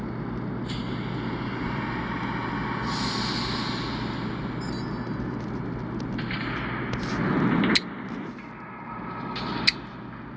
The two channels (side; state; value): both; identical; correlation 1.00